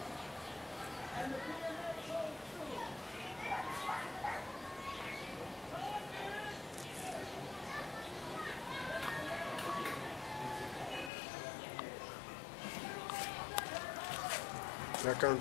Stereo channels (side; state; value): right; drops out; at 11.1 s